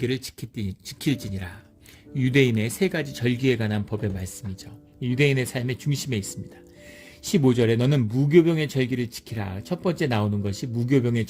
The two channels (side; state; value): both; identical; correlation 1.00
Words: 지킬지니라. 유대인의 3가지 절기에 관한 법의 말씀이죠. 유대인의 삶의 중심에 있습니다. 15절에 너는 무교병의 절기를 지키라. 첫 번째 나오는 것이 무교병의